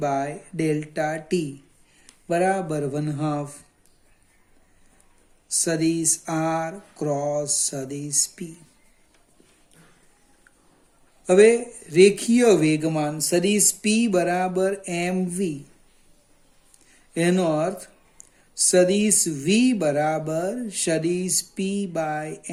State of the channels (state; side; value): identical; both; correlation 1.00